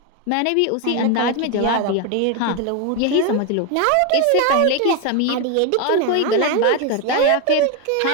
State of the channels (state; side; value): different; both; correlation 0.02